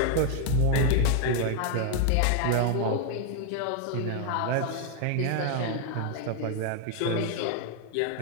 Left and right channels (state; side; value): different; both; correlation 0.01